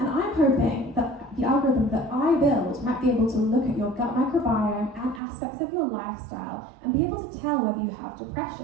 I'm hoping that the algorithm that I build might be able to look at your gut microbiome and aspects of your lifestyle and be able to tell whether you have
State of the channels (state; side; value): drops out; left; at 5.2 s